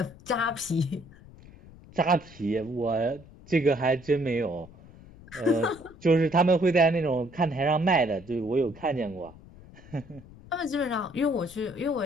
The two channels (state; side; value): noise; left; rumble, 21 dB below the sound